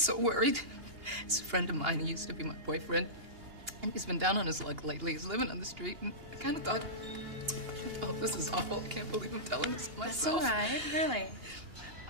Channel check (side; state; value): left; late; 2.8 ms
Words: worried. It's a friend of mine. He used to be my boyfriend. And he's been down on his luck lately. He's living on the street. And I kind of thought, oh, this is awful. I can't believe I'm telling this to myself. That's all right, really.